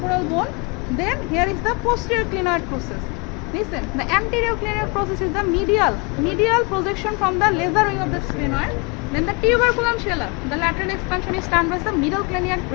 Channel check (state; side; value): quieter; right; 30.2 dB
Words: bone. Then here is the posterior clinoid process. Listen, the anterior clinoid process is the medial projection from the laser wing of the sphenoid. Then the tuberculum scella, the lateral expansion is termed as the middle